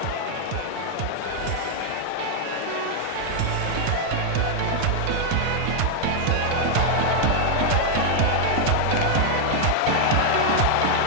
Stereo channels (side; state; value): both; different; correlation 0.00